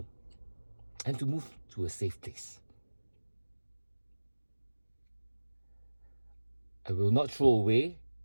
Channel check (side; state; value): both; inverted; correlation -1.00